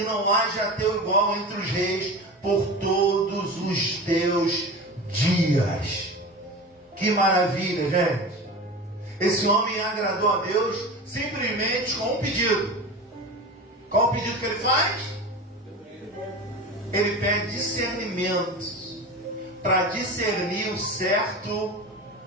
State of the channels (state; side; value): normal; both; correlation 0.30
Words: não haja teu igual entre os reis por todos os teus dias. Que maravilha, gente! Esse homem agradou a Deus simplesmente com um pedido. Qual o pedido que ele faz? Ele pede discernimento para discernir o certo